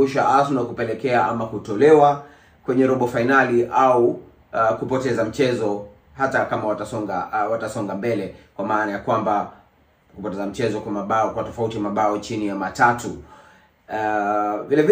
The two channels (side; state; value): both; identical; correlation 1.00